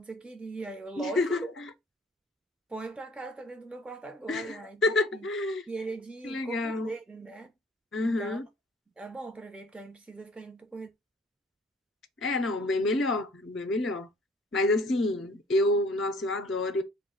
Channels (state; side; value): normal; both; correlation 0.55